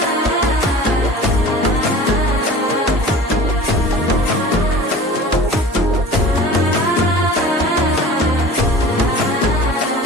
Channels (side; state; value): both; normal; correlation 0.40